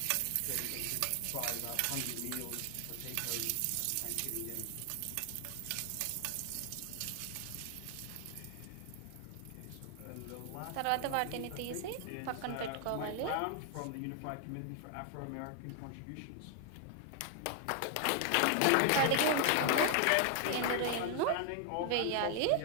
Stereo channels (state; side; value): different; both; correlation 0.00